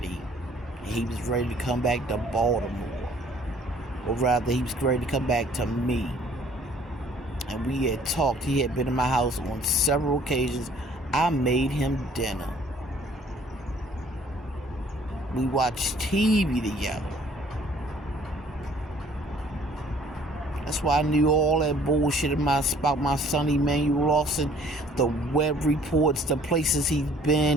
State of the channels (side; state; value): both; normal; correlation 0.56